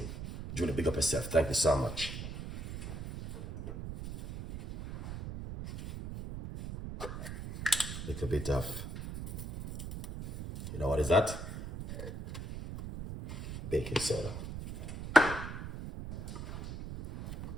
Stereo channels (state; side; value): noise; right; rumble, 8 dB below the sound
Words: Julie, big up yourself. Thank you so much. Little bit of, you know what is that? Baking soda.